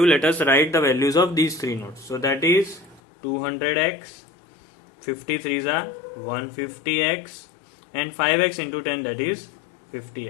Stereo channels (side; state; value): right; drops out; at 3.0 s